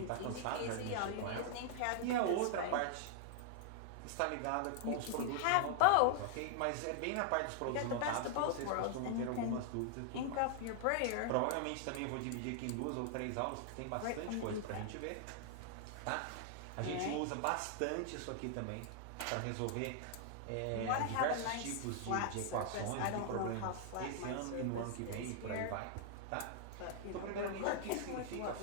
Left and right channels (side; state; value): both; different; correlation 0.00